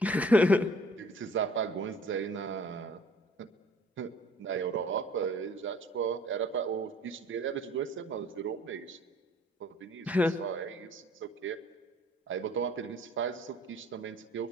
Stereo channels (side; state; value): both; normal; correlation 0.53